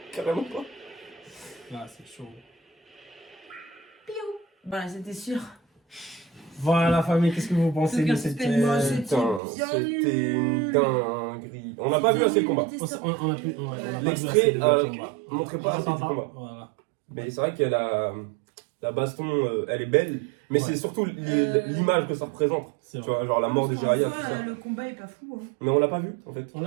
Carrément pas. Là, c'est chaud. Bah c'était sûr. Voilà, la famille, qu'est-ce que vous pensez de Aucun cette. suspense. Moi, c'est- Putain, bien c'était une nul. dinguerie. On n'a pas vu assez le combat. On a pu. On a pas vu L'extrait, assez de combat. montrait pas On assez entend du pas. combat. Voilà. Mais c'est vrai qu'il y a la baston, elle est belle. Mais Ouais. c'est surtout l'image que ça représente. C'est Tu vrai. vois, genre la mort de En Jiraiya, soi, tout ça. le combat est pas fou. Hein. Mais on l'a pas vu en fait. On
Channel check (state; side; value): drops out; left; at 9.4 s